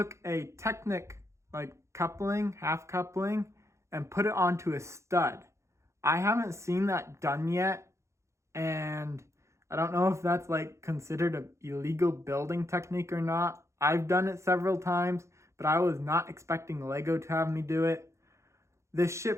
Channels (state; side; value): late; left; 0.14 ms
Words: a Technic, like coupling, half coupling, and put it onto a stud. I haven't seen that done yet, and I don't know if that's like considered an illegal building technique or not. I've done it several times, but I was not expecting Lego to have me do it. This ship